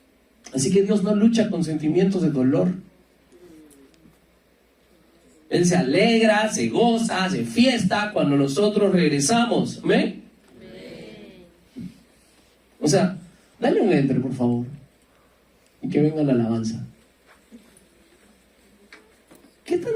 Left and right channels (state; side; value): identical; both; correlation 1.00